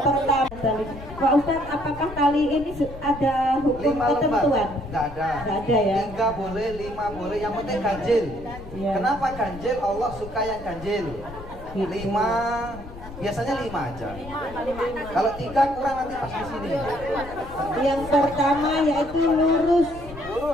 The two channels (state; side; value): noise; left; rumble, 14 dB below the sound